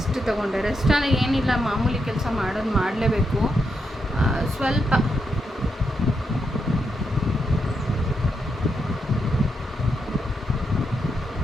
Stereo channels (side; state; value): both; normal; correlation 0.82